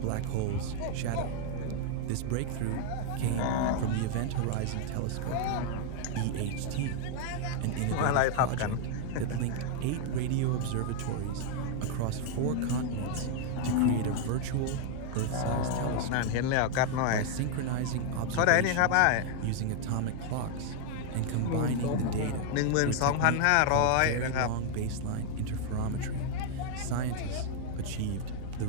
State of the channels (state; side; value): different; both; correlation 0.00